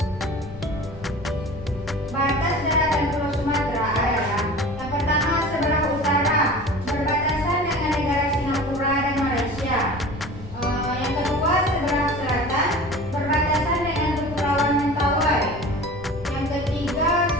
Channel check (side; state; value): left; noise; rumble, 17 dB below the sound